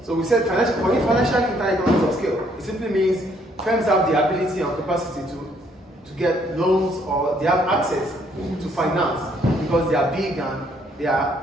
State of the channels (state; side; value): normal; both; correlation 0.67